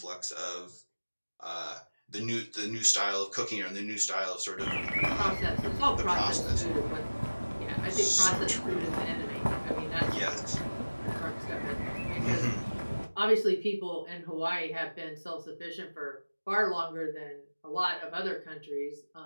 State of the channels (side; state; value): both; inverted; correlation -1.00